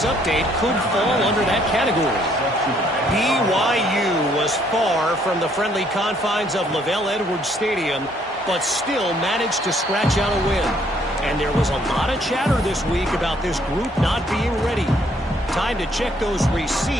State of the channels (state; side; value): normal; both; correlation 0.66